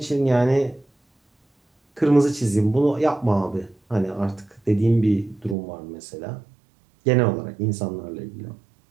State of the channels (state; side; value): drops out; left; at 5.6 s